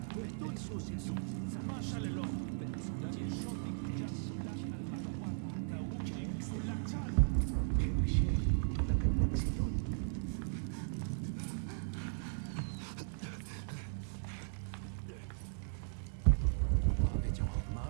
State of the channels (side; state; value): left; silent; digital silence